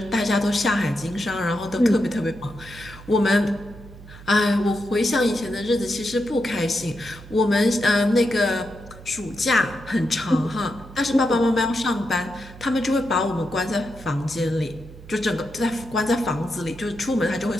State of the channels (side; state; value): right; noise; hum, 17 dB below the sound